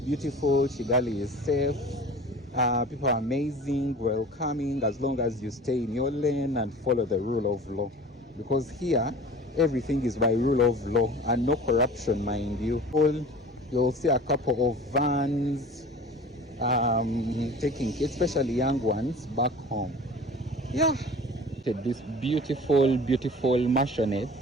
Kigali is safe. People are amazing, welcoming, as long as you stay in your lane and follow the rule of law. Because here, everything is by rule of law and no corruption, mind you. You'll see a couple of vans taking, especially young ones, back home. Yeah. This beautiful, beautiful mansionette,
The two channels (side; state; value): both; normal; correlation 0.41